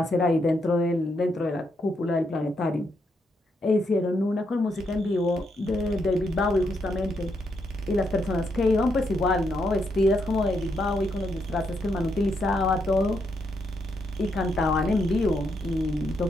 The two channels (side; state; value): both; normal; correlation 0.79